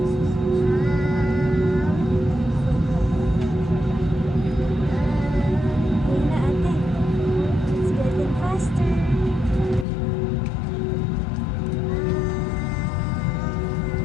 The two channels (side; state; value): right; drops out; at 9.9 s